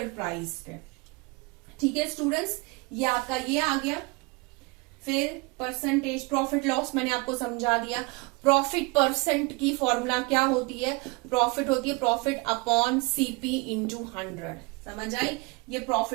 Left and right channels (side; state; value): left; quieter; 27.2 dB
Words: प्राइस पे, ठीक है स्टूडेंट्स। ये आपका ये आ गया। फिर परसेंटेज, प्रॉफिट लॉस मैंने आपको समझा दिया। प्रॉफिट परसेंट की फॉर्मूला क्या होती है, प्रॉफिट होती है प्रॉफिट अपॉन सीपी इंटू 100, समझ आई। ये